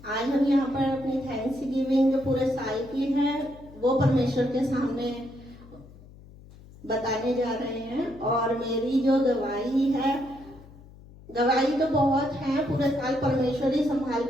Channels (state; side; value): noise; left; hum, 21 dB below the sound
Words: आज हम यहाँ पर अपनी थैंक्स गिविंग जो पूरे साल की है वो परमेश्वर के सामने बताने जा रहे हैं। और मेरी जो गवाही है, गवाही तो बहुत है, पूरे साल परमेश्वर ही संभाल